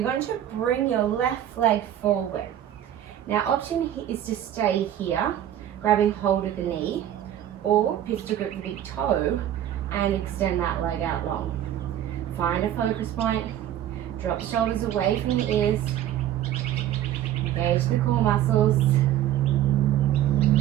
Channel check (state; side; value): quieter; left; 11.6 dB